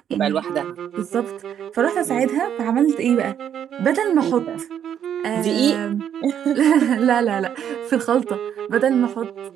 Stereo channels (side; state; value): left; quieter; 9.2 dB